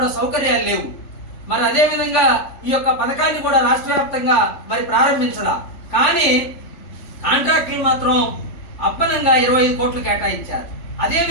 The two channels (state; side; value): late; right; 3.5 ms